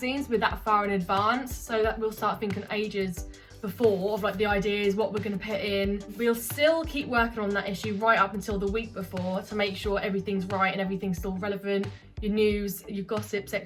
with that far in advance. So that we'll start thinking ages before of like the ideas, what we're going to put in. We'll still keep working on that issue right up until the week before to make sure everything's right and everything's still relevant. Your news, your gossip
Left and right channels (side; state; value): both; identical; correlation 1.00